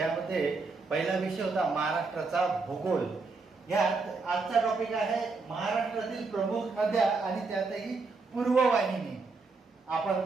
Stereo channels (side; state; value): left; quieter; 4.1 dB